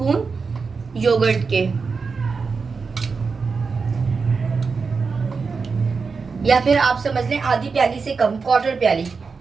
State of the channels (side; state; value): left; quieter; 4.9 dB